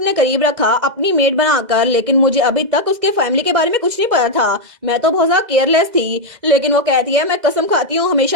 करीब रखा अपनी मेड बनाकर, लेकिन मुझे अभी तक उसके फैमिली के बारे में कुछ नहीं पता था, मैं तो बहुत ज्यादा केयरलेस थी। लेकिन वो कहती है मैं कसम खाती हूँ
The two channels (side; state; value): left; late; 2.0 ms